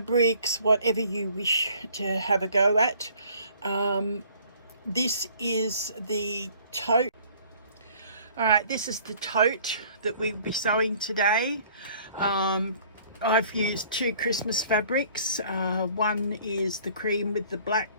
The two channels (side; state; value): both; inverted; correlation -0.55